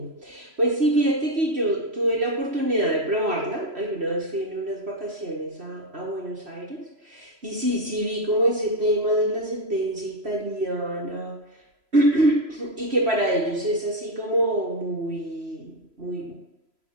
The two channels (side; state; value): left; late; 3.0 ms